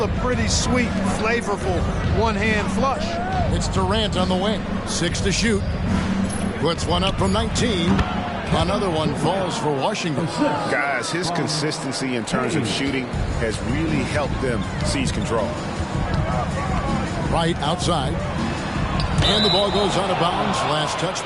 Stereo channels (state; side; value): identical; both; correlation 1.00